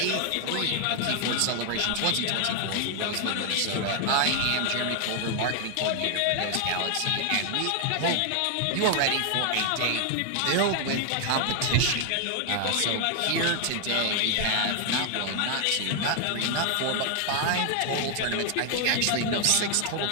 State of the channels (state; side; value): different; both; correlation 0.00